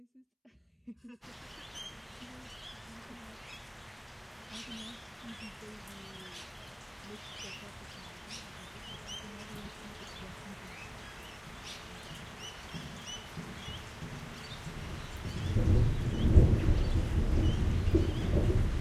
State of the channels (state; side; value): identical; both; correlation 1.00